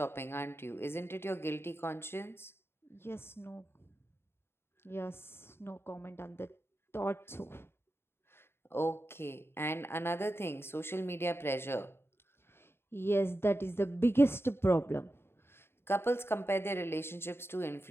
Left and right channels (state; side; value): late; right; 0.11 ms